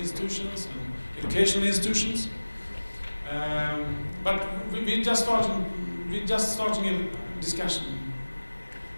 institutions and educational institutions. But we're just starting a discussion.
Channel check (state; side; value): inverted; both; correlation -1.00